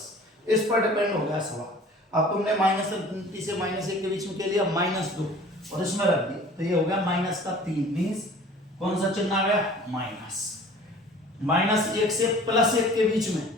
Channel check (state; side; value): normal; both; correlation 0.47